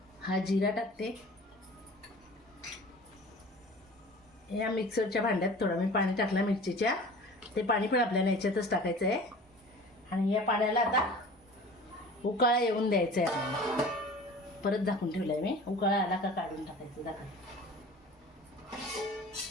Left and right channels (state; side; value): normal; both; correlation 0.41